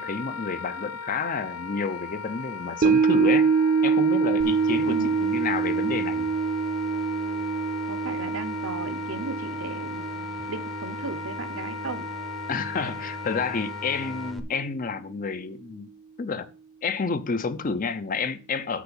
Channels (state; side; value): normal; both; correlation 0.33